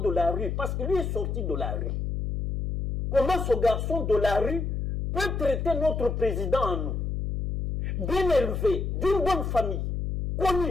la rue, parce que lui est sorti de la rue. Comment ce garçon de la rue peut traiter notre président en nous? Bien élevé, d'une bonne famille,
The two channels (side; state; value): left; noise; hum, 2 dB below the sound